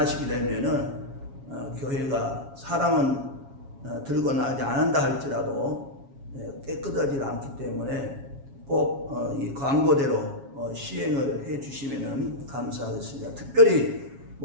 되면은 교회가 사람은 들거나 하지 않는다 할지라도 깨끗하지 않기 때문에 꼭 이 광고대로 시행을 해 주시면 감사하겠습니다. 특별히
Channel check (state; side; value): late; left; 7.3 ms